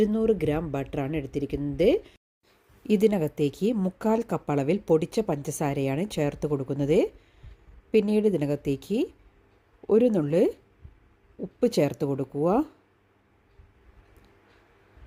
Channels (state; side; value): identical; both; correlation 1.00